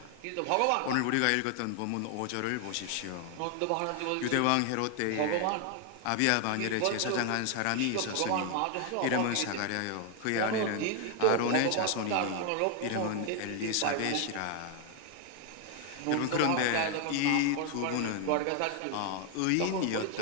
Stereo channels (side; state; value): both; different; correlation 0.00